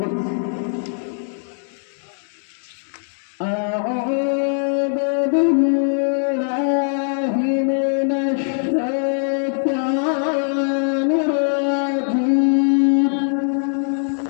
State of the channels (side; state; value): right; silent; digital silence